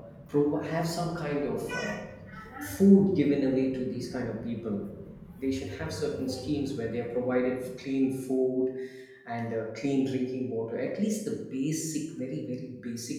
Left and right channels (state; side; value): identical; both; correlation 1.00